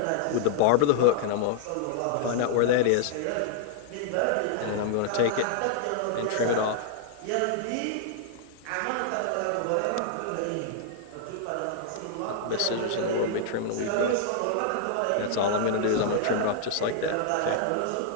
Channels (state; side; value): different; both; correlation -0.01